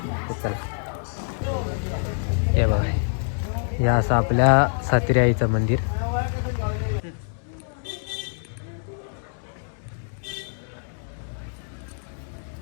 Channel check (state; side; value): silent; right; digital silence